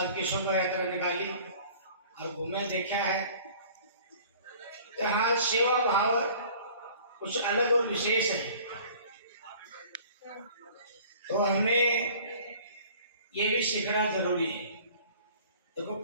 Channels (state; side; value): inverted; both; correlation -0.49